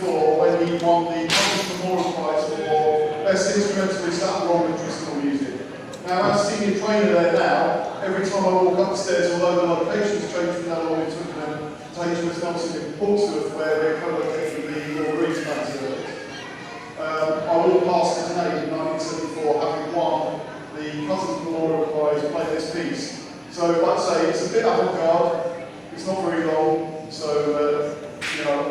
when he won the Conductor Memorial Prize for best instrumentalists that were on traditional music. Now, as senior trainer there now, every time I walk upstairs, although the location's changed from now on, we took them to HMS Nelson in Portsmouth, where we're co-located with the Royal Marines Service. I walked past it today in 1974, having won the Cousins Memorial Prize play this piece. So, like I say, it's a bit avant-garde, it's not very long, so, you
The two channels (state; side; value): identical; both; correlation 1.00